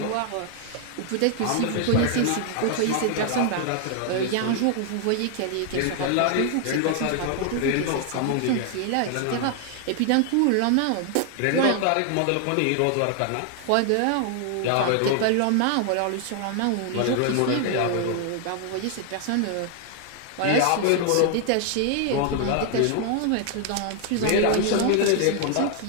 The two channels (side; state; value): both; different; correlation 0.00